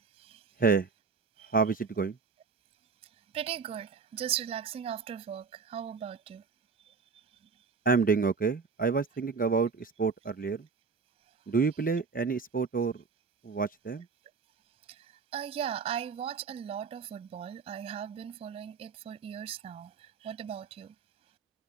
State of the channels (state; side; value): quieter; left; 5.1 dB